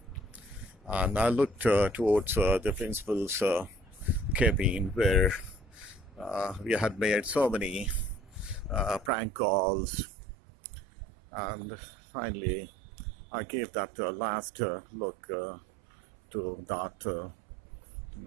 And I looked towards the principal's cabin, where we had made so many prank calls, and finally I gave that last look to that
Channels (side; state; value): left; drops out; at 9.1 s